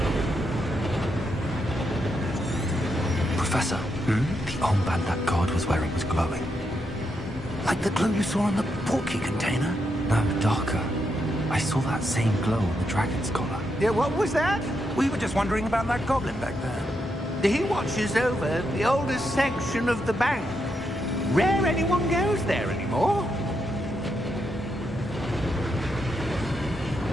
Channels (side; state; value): both; normal; correlation 0.81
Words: Professor, the armband that guard was wearing was glowing. Like the glow you saw on the portkey container? No, darker. I saw that same glow on the dragon's collar. Yeah, what was that? We were just wondering about that goblin back there. He watches over the oldest section of the bank. Rare anyone goes there anymore.